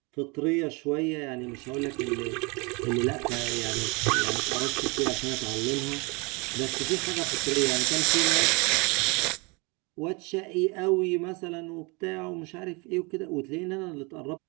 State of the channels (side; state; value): left; quieter; 28.9 dB